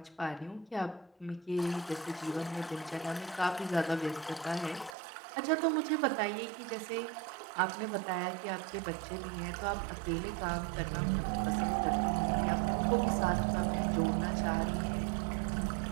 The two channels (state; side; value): drops out; left; at 5.0 s